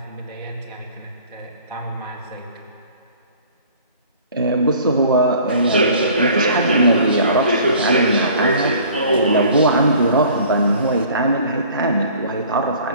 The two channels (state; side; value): inverted; both; correlation -0.50